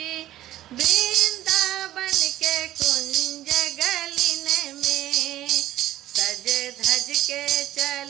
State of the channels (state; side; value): quieter; left; 13.9 dB